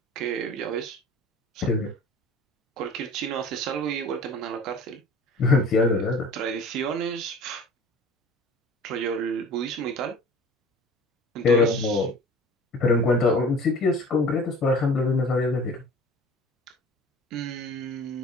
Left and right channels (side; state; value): both; normal; correlation 0.44